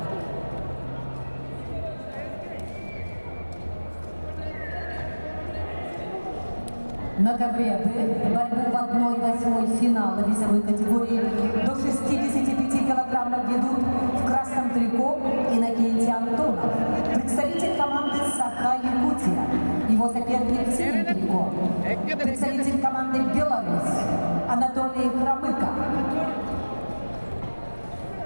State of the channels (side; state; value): both; inverted; correlation -1.00